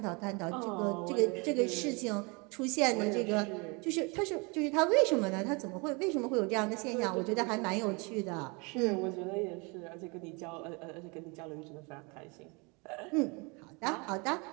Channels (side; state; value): left; quieter; 29.8 dB